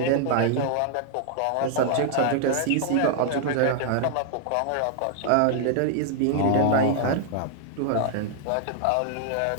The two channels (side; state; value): both; different; correlation 0.00